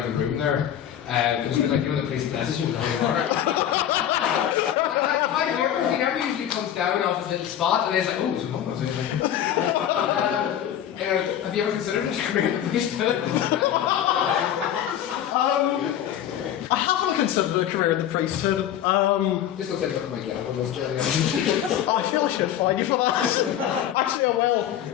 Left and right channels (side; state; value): right; quieter; 10.7 dB